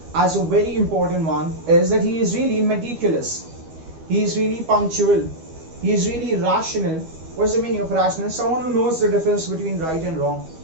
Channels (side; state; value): left; late; 12 ms